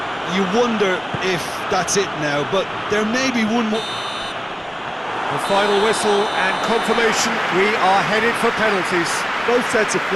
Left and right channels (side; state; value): both; identical; correlation 1.00